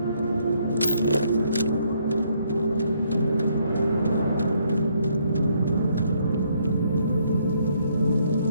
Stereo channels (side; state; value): both; inverted; correlation -0.71